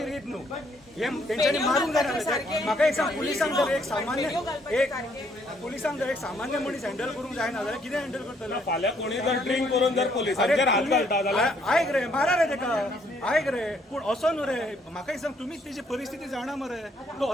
रीत न्हू. हे तेंच्यांनी मारूंक जायना. म्हाका एक सांग, पुलिसांक जर एक सामान्य मनीस हँडल करूंक जायना जाल्यार कितें हँडल करतलो? फाल्यां कोणी जर ड्रिंक करून जर पोलिसांचेर हात घालता जाल्यार आयक रे, मारा रे तेका, आयक रे. पूण असो न्हू रे. म्हाका एक सांग, तुमीच तेजी परिस्थिती जाणा मरे. तो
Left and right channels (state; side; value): normal; both; correlation 0.68